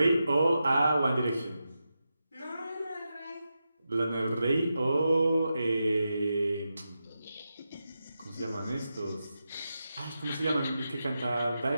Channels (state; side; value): inverted; both; correlation -0.89